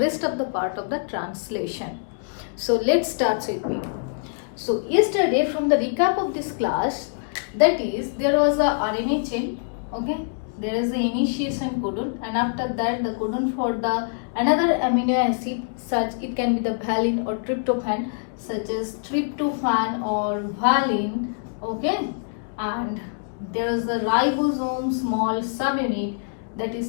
of the part of the translation. So let's start with me. So yesterday, from the recap of this class, that is, there was a RNA chain, okay? There is the initiation codon, and after that the codon for the another amino acid, such it can be the valine or tryptophan, such as tryptophan or valine, okay? And there is a ribosome small subunit, that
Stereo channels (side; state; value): right; silent; digital silence